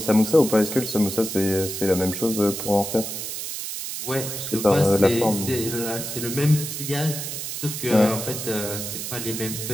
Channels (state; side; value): noise; right; hiss, 6 dB below the sound